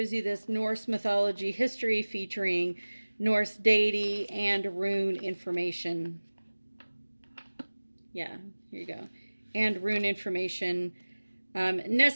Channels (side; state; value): both; inverted; correlation -1.00